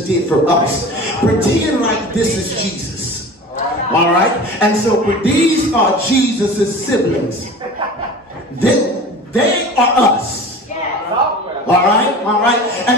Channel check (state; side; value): normal; both; correlation 0.37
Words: did for us, pretend like this is Jesus. All right? And so these are Jesus' siblings. They are us. All right.